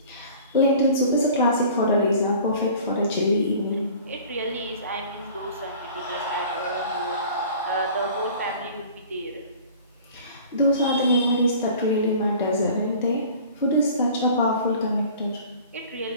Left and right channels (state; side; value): inverted; both; correlation -0.46